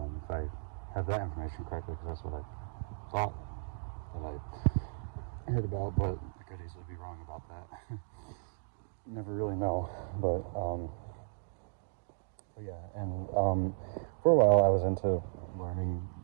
If I have that information correctly, because that's what I thought that I heard about, but I could easily be wrong about that. Never really know, but yeah, and for a while I was into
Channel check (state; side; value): silent; left; digital silence